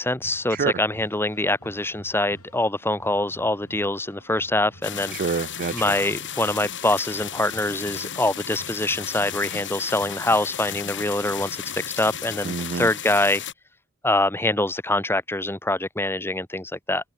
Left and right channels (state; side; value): normal; both; correlation 0.52